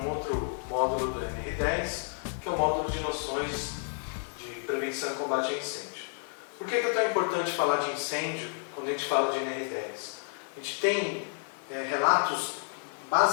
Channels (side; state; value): right; silent; 56 dB below the other